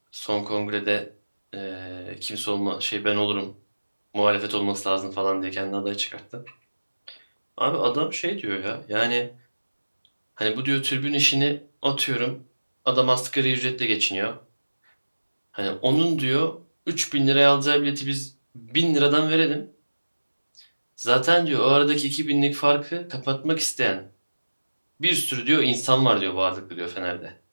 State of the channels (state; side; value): inverted; both; correlation -1.00